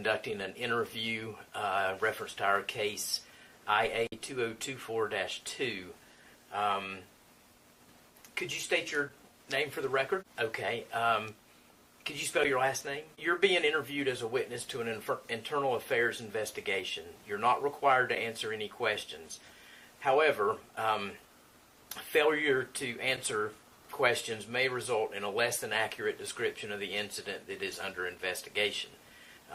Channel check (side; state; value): both; identical; correlation 1.00